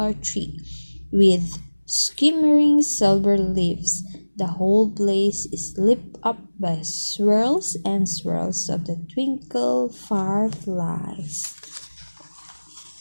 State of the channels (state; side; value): inverted; both; correlation -1.00